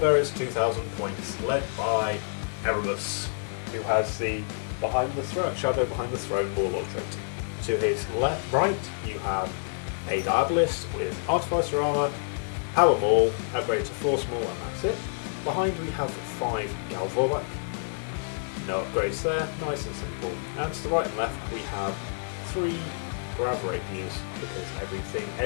2,000 points, led by Erebus, who has the shadow behind the throne warlord trait. To his right, you have a Diabolist with Artificer armor, Power Maul, upgrade to Force Maul, and that's it. Behind we have 5 Galvorback. No upgrades there, nice and simple. And to the right and left we have 3 Grav Rapiers, because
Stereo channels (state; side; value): silent; right; digital silence